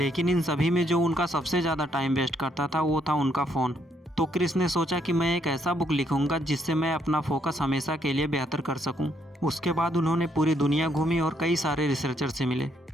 इन सभी में जो उनका सबसे ज़्यादा टाइम वेस्ट करता था वो था उनका फ़ोन। तो क्रिस ने सोचा कि मैं एक ऐसा बुक लिखूंगा जिससे मैं अपना फोकस हमेशा के लिए बेहतर कर सकूं। उसके बाद उन्होंने पूरी दुनिया घूमी और कई सारे रिसर्चर से मिले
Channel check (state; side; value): normal; both; correlation 0.72